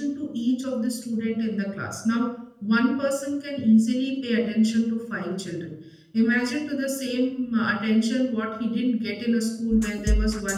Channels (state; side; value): identical; both; correlation 1.00